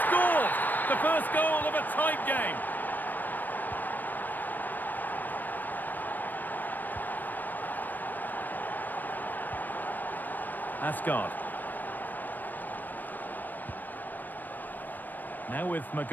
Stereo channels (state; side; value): late; right; 0.088 ms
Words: scored! The first goal of a tight game. Asgard. Now with